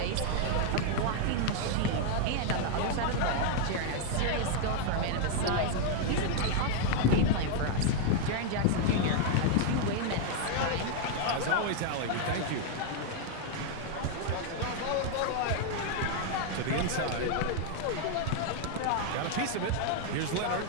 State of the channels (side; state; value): both; different; correlation 0.00